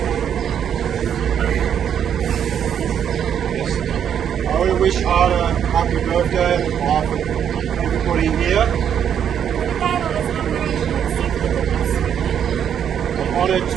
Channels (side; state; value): left; quieter; 8.8 dB